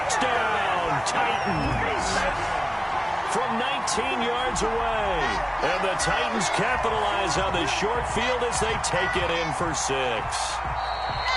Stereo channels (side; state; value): both; identical; correlation 1.00